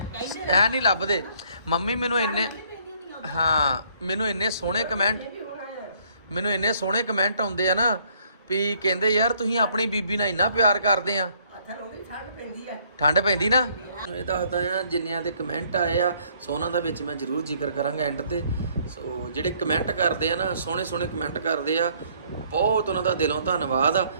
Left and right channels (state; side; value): inverted; both; correlation -0.64